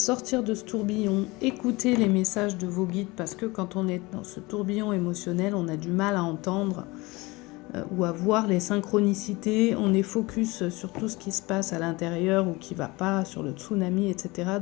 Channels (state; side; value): quieter; right; 23.0 dB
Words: sortir de ce tourbillon, écouter les messages de vos guides, parce que quand on est dans ce tourbillon émotionnel, on a du mal à entendre ou à voir les synchronicités. On est focus sur tout ce qui se passe à l'intérieur ou qui ne va pas, sur le tsunami, etc.